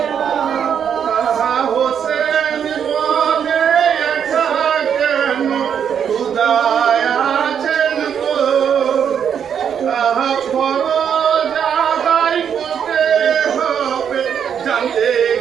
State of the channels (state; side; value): quieter; left; 8.1 dB